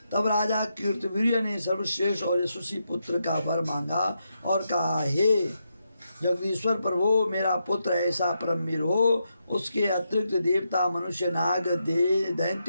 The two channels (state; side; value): inverted; both; correlation -0.83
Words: तब राजा कीर्तिवीर्य ने सर्वश्रेष्ठ और यशस्वी पुत्र का वर मांगा और कहा, हे जगदीश्वर प्रभु, मेरा पुत्र ऐसा परमवीर हो, उसके अतिरिक्त देवता, मनुष्य, नाग,